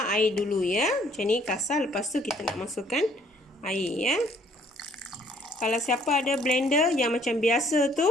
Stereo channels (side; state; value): both; normal; correlation 0.62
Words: air dulu ya. Macam ni kasar, lepas tu kita nak masukkan air ya. Kalau siapa ada blender yang macam biasa tu,